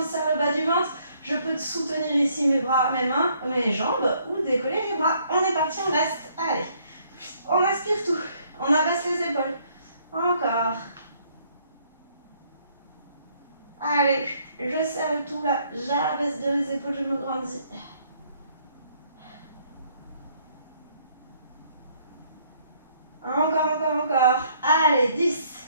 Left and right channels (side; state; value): both; inverted; correlation -0.66